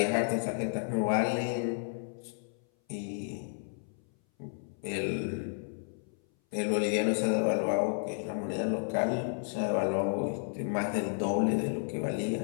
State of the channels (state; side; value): silent; right; 56 dB below the other